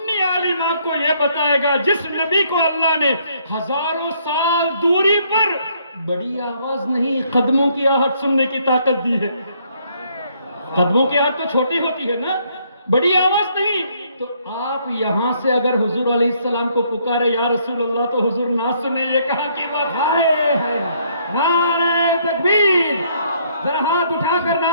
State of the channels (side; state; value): both; inverted; correlation -0.68